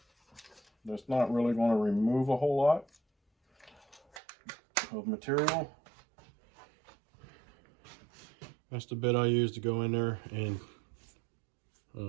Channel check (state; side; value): drops out; left; at 4.2 s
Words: that's not really going to remove a whole lot of material. That's the bit I use to go in there and